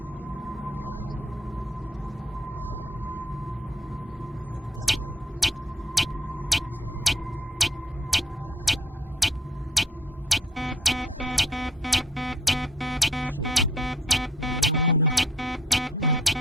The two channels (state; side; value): normal; both; correlation 0.64